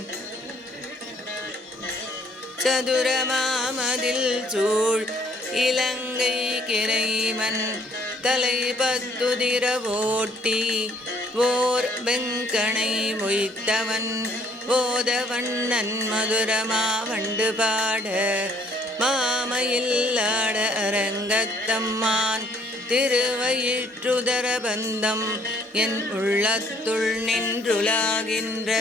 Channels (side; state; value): both; normal; correlation 0.62